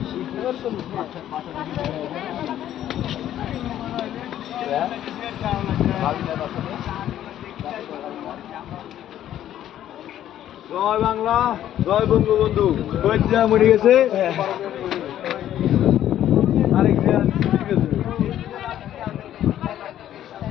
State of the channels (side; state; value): right; quieter; 11.7 dB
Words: জয় বাংলা, জয় বঙ্গবন্ধু। মরে গেছে।